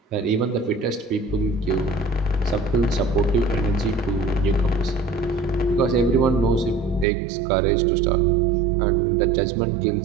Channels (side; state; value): left; drops out; at 7.1 s